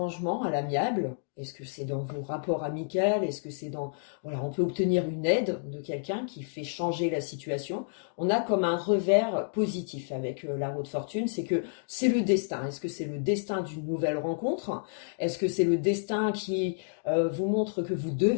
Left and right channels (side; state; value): right; silent; digital silence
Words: à l'amiable. Est-ce que c'est dans vos rapports amicaux? Est-ce que c'est dans... Voilà, on peut obtenir une aide de quelqu'un qui fait changer la situation. On a comme un revers positif avec la roue de fortune, c'est que c'est le destin. Est-ce que c'est le destin d'une nouvelle rencontre? Est-ce que c'est le destin qui vous montre que vous